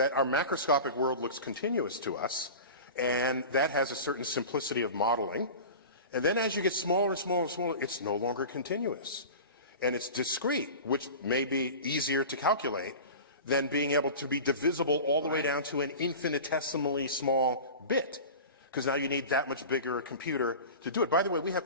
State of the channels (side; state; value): both; inverted; correlation -0.33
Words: our macroscopic world looks continuous to us, and that has a certain simplicity of modeling. And then as you get smaller and smaller and smaller, it's no longer continuous. And it's discrete, which may be easier to calculate than being able to be divisible all the way down to an infinitesimally small bit. Because now you need that much bigger a computer to do it. By the way,